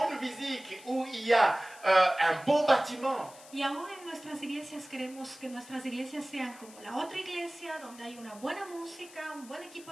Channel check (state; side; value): noise; left; hiss, 20 dB below the sound